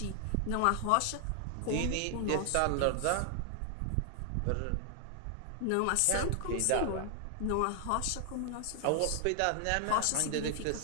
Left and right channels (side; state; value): both; different; correlation 0.00